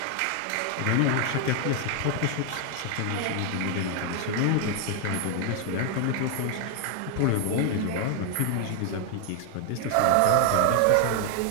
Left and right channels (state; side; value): different; both; correlation 0.00